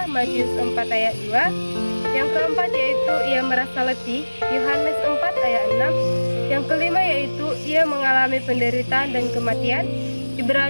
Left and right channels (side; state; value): both; inverted; correlation -1.00